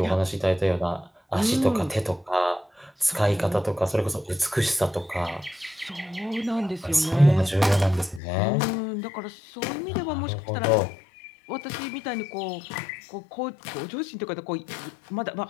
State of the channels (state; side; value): drops out; right; at 8.2 s